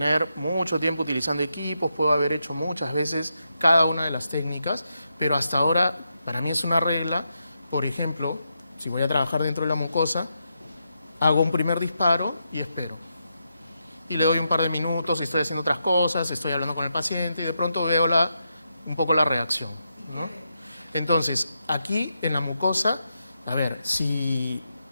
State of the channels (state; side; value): inverted; both; correlation -0.84